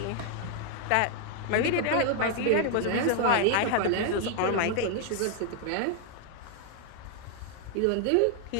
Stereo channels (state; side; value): different; both; correlation 0.00